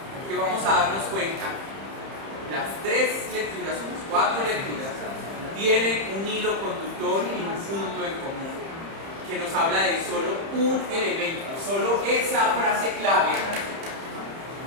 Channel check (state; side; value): late; left; 30 ms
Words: que vamos a darnos cuenta, las 3 lecturas o las 4 lecturas tienen un hilo conductor y un punto en común que nos habla de solo un elemento, solo esa frase clave